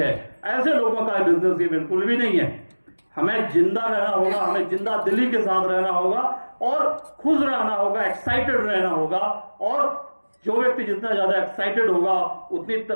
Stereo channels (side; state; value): both; inverted; correlation -1.00